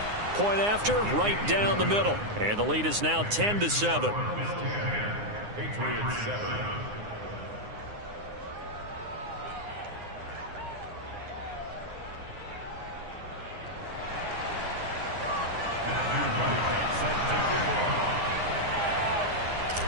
Point after, right down the middle. And the lead is now 10-7. Patriots 7.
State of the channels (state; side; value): late; left; 9.7 ms